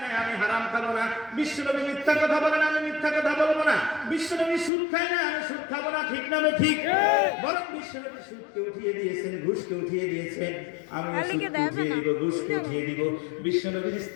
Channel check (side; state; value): right; drops out; at 4.7 s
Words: না, আমি হারাম খাবো না। বিশ্বনবী মিথ্যা কথা বলে না, আমি মিথ্যা কথা বলবো না। বিশ্বনবী সুদ খায় না, আমি সুদ খাবো না, ঠিক না ঠিক? বরং বিশ্বনবী সুদকে উঠিয়ে দিয়েছেন, ঘুষকে উঠিয়ে দিয়েছেন, আমি সুদকে উঠিয়ে দিব, ঘুষকে উঠিয়ে দিব। বিশ্বনবীর